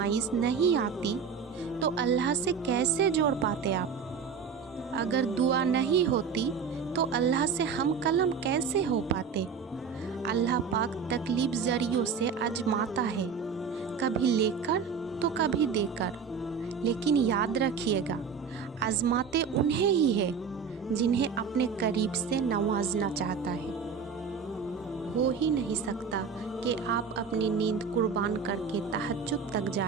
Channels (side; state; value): left; quieter; 6.1 dB